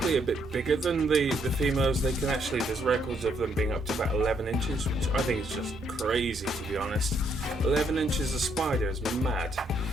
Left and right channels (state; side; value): normal; both; correlation 0.72